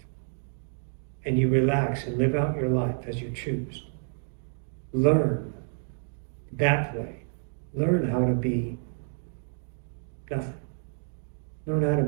and you relax and live out your life as you choose, learn that way. Learn how to be nothing. Learn how to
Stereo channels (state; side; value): silent; left; 59 dB below the other